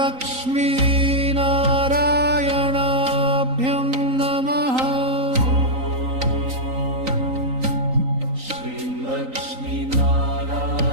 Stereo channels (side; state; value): left; late; 3.9 ms